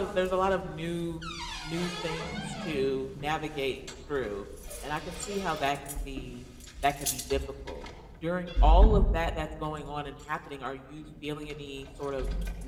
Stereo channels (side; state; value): both; identical; correlation 1.00